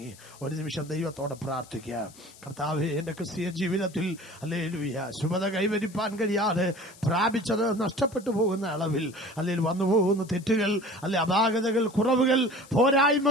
ഒരു നിമിഷം ദൈവത്തോട് പ്രാർത്ഥിക്കാം. കർത്താവേ, എന്റെ ക്രിസ്തീയ ജീവിതത്തിൽ ഹല്ലേലൂയ ശുഭത കൈവരിപ്പാൻ കഴിയാതെ പ്രാപിച്ചത് നഷ്ടപ്പെട്ടു പോകുന്ന അളവിൽ അല്ലെങ്കിൽ വന്നു പോകുന്ന തെറ്റുകൾ, അല്ലെ അപാകതകൾ, കുറവുകൾ,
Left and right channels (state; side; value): noise; left; hiss, 22 dB below the sound